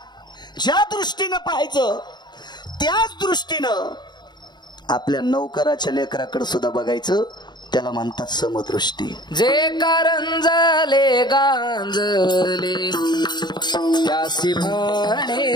ज्या दृष्टीनं पाहायचं त्याच दृष्टीनं आपल्या नौकराच्या लेकराकडे सुद्धा बघायचं. त्याला म्हणतात समदृष्टी. जे कारंजले गांजले त्यासी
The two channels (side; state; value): right; late; 0.21 ms